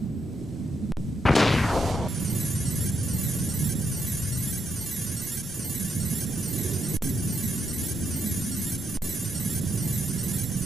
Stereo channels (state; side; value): normal; both; correlation 0.79